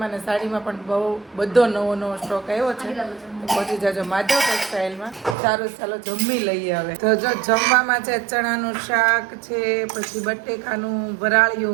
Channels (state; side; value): drops out; left; at 5.4 s